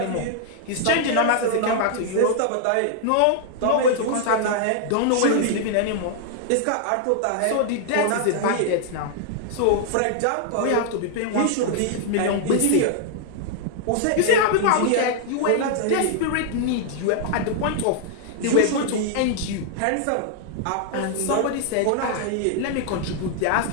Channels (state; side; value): different; both; correlation -0.01